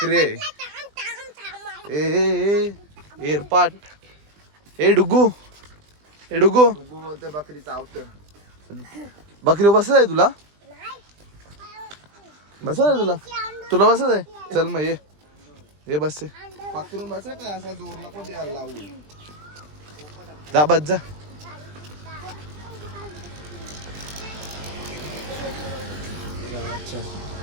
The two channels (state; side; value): late; left; 20 ms